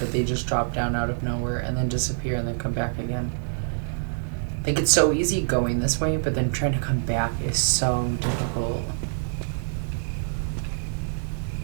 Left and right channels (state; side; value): silent; left; digital silence